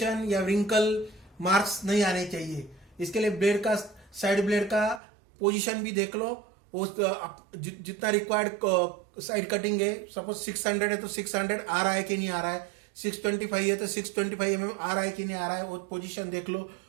या रिंकल मार्क्स नहीं आने चाहिए। इसके लिए ब्लेड का साइड ब्लेड का पोजीशन भी देख लो। जितना रिक्वायर्ड साइड कटिंग है, सपोज 600 है तो 600 आ रहा है कि नहीं आ रहा है, 625 है तो 625 mm आ रहा है कि नहीं आ रहा है, वो पोजीशन देख लो।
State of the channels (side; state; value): left; drops out; at 5.0 s